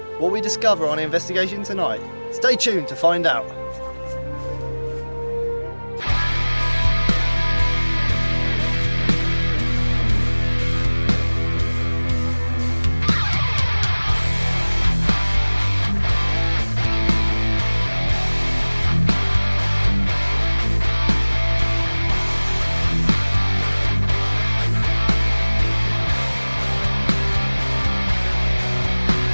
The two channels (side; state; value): both; inverted; correlation -1.00